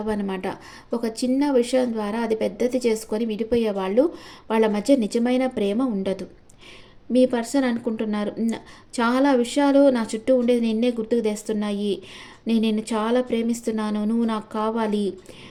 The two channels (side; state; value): both; identical; correlation 1.00